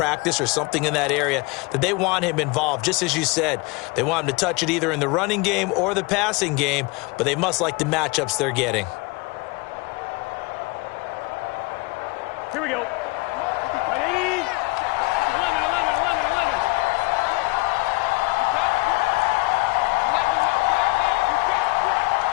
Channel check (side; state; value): right; quieter; 24.2 dB